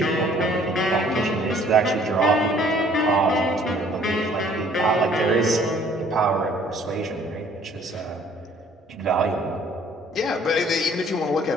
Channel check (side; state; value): both; normal; correlation 0.58